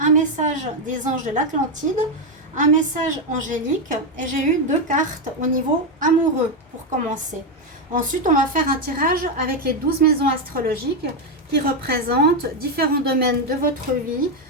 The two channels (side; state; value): both; normal; correlation 0.06